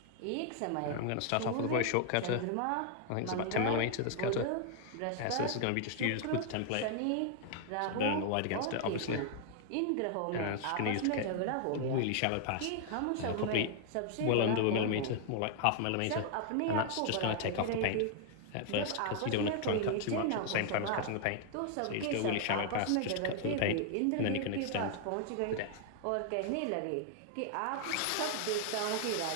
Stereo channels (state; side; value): different; both; correlation 0.00